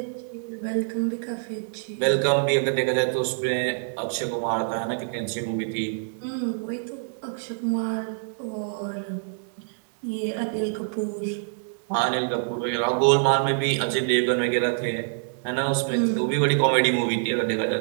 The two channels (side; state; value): left; silent; 61 dB below the other